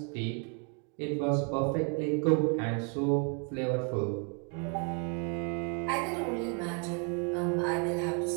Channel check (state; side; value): quieter; left; 37.0 dB